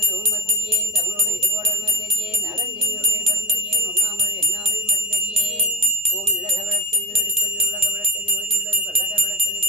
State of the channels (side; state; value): both; normal; correlation 0.20